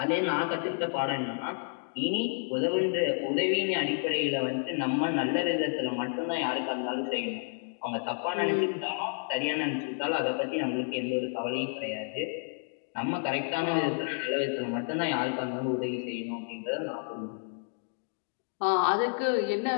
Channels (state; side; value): silent; right; digital silence